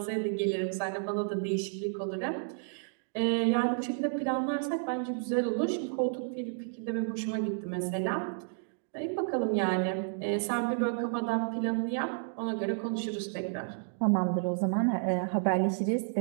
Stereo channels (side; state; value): left; silent; digital silence